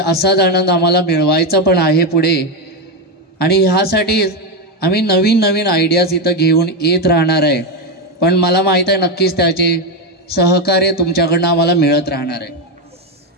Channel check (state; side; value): normal; both; correlation 0.09